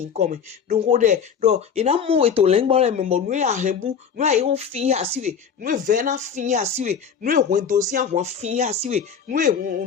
come don ko de do ina mo we to le ngbo le me mo nu ahembu nu ai ho fin asiwe nu ve na fin asiwe nu ho dosi ahun fin asiwe nu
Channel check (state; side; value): quieter; right; 6.9 dB